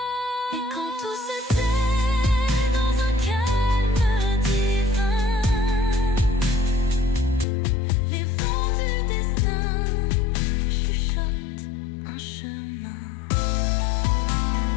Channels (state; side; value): drops out; right; at 7.5 s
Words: Et quand tout se tait dans un calme divin, les vents du destin chuchotent un chemin.